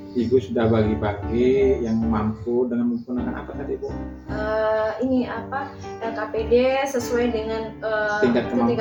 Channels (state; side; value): identical; both; correlation 1.00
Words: Ibu sudah bagi-bagi yang mampu dengan menggunakan apa tadi Bu? LKPD sesuai dengan tingkat